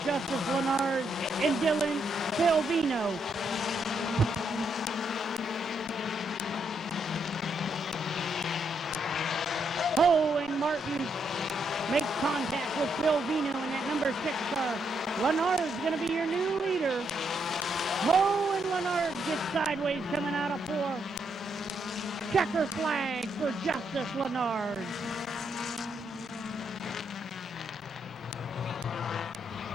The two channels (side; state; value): both; normal; correlation 0.77